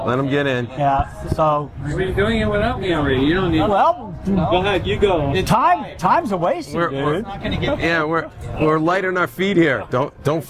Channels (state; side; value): identical; both; correlation 1.00